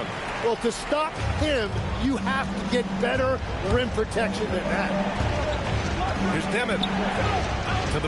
Well, to stop him, you have to get better rim protection than that. Here's Dimon to the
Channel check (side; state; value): both; identical; correlation 1.00